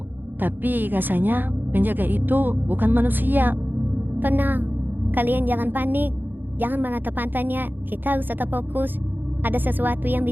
Tapi rasanya penjaga itu bukan manusia. Tenang, kalian jangan panik. Jangan menatap matanya. Kita harus tetap fokus. Ada sesuatu yang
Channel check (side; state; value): left; late; 0.091 ms